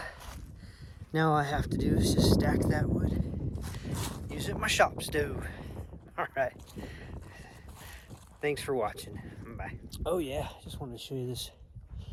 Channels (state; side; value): identical; both; correlation 1.00